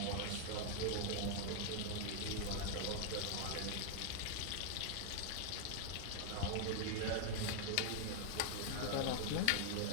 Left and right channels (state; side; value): different; both; correlation 0.00